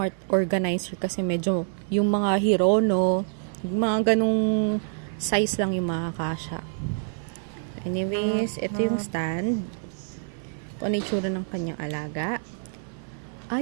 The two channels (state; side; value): silent; left; 55 dB below the other